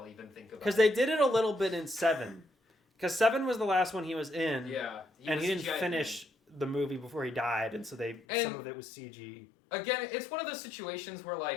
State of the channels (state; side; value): drops out; right; at 8.2 s